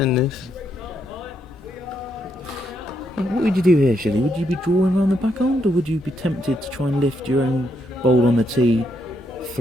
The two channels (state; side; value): normal; both; correlation 0.77